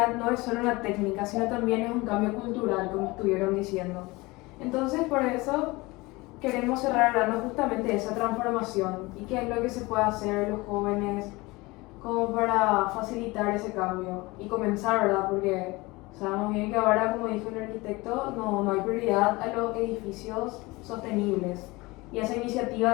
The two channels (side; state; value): right; quieter; 22.6 dB